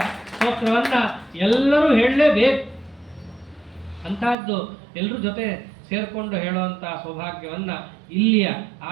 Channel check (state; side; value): drops out; left; at 4.4 s